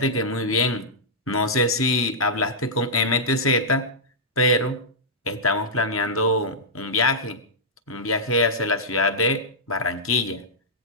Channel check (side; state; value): both; normal; correlation -0.11